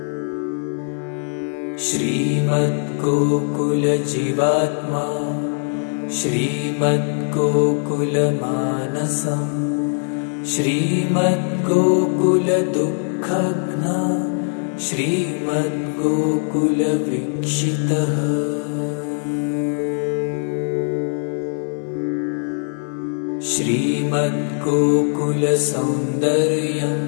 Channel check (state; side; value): silent; right; digital silence